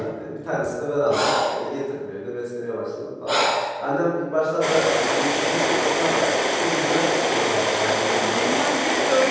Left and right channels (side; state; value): both; identical; correlation 1.00